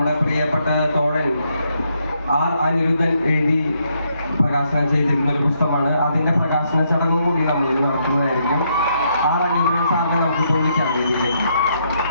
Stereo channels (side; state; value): both; inverted; correlation -0.75